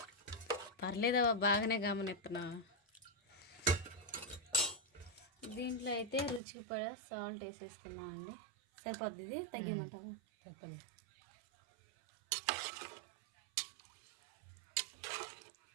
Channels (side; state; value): left; drops out; at 6.4 s